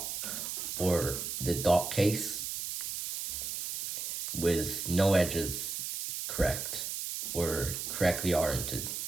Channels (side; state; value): right; noise; hiss, 4 dB below the sound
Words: or the dot case with no edges correct or correctly oriented.